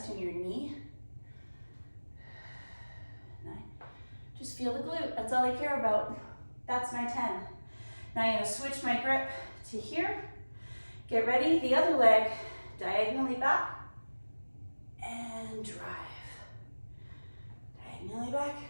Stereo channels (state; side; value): inverted; both; correlation -1.00